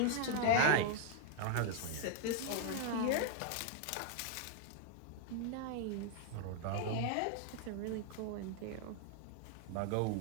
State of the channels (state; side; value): different; both; correlation 0.00